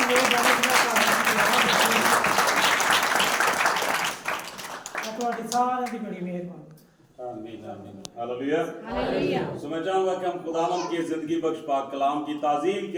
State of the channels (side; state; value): both; identical; correlation 1.00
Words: ਮਿਹਰਬਾਨੀ ਤੁਹਾਡੀ ਸਾਰਿਆਂ ਦੀ बड़ी मेहरबानी। आमीन आमीन हालेलुया हालेलुया। तो मैं चाहूंगा कि हम खुदावंद की जिंदगी बख्श पाक कलाम की ताज़ीम